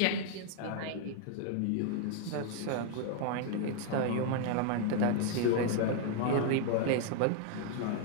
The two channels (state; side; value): different; both; correlation 0.00